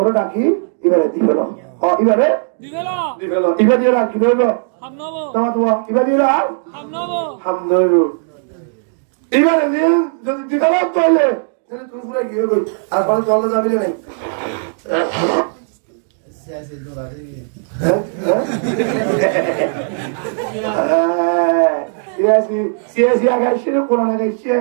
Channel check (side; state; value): left; silent; 68 dB below the other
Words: ডাকি এবারে দিবেল এবারে দিবেল এবারে দিয়ে রাখি দেব তোমার তোমার এবারে দিয়ে রাখ হামদর এবারে দিয়ে যদি দিবেল তাহলে তুমি পুরো গিয়ে গই আর পরে চলে যাবি না সিয়াসি আগাইছে কোরআন আগাইছে